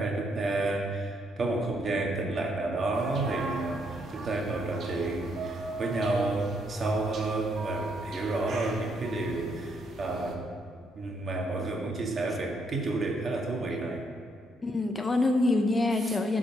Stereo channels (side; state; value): both; normal; correlation 0.74